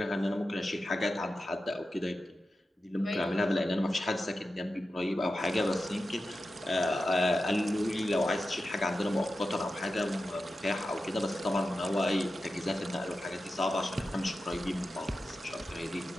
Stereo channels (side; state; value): both; normal; correlation 0.92